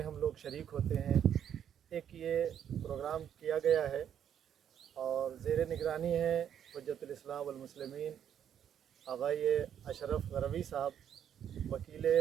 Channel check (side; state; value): left; quieter; 9.3 dB